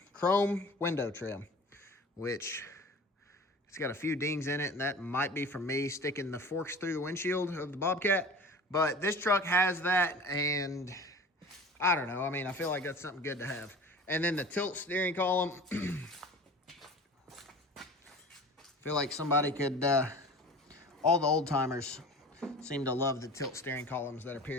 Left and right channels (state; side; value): normal; both; correlation 0.39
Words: chrome window trim, which it's got a few dings in it, and that might be from me sticking the forks through the windshield of the Bobcat. But this truck has that, and I don't know. I mean, I feel like that's something good to have. And then the tilt steering column. Feel like somebody could, all the old timers seem to love the tilt steering columns that are